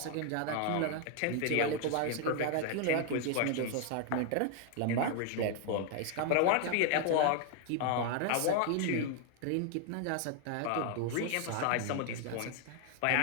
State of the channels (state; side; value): different; both; correlation 0.00